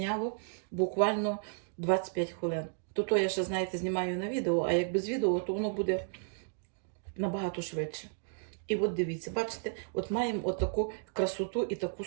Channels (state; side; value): silent; left; digital silence